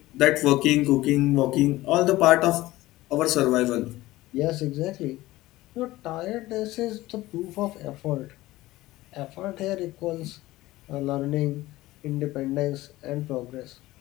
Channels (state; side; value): quieter; right; 17.6 dB